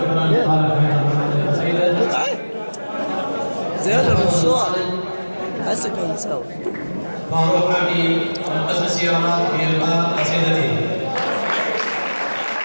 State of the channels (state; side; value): inverted; both; correlation -1.00